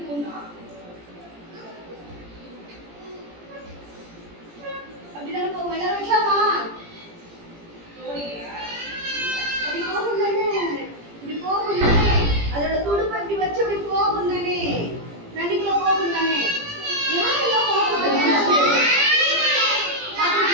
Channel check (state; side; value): late; left; 17 ms